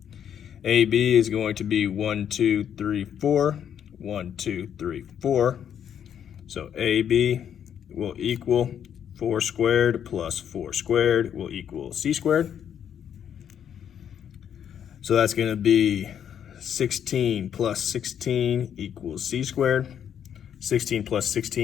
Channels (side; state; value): right; quieter; 9.0 dB